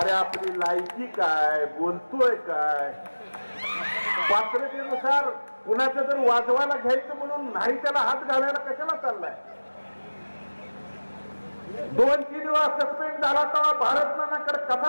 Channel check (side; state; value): both; inverted; correlation -1.00